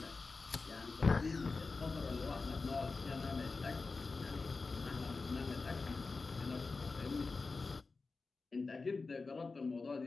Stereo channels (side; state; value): right; quieter; 4.0 dB